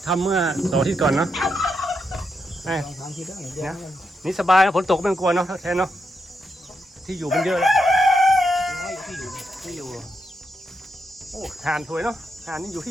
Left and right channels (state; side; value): normal; both; correlation 0.83